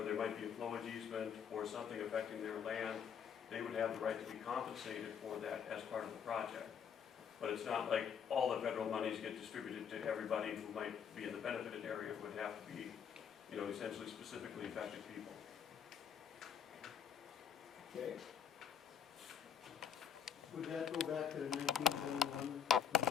there might be a flowage easement or something affecting their land, they would have the right to be compensated for that as part of the project. But it's not like all the federal monies get distributed to everybody who might be in the benefited area. It would have to be, essentially specifically affected people. Okay. Would that go back to the 1971?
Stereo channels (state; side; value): quieter; right; 7.7 dB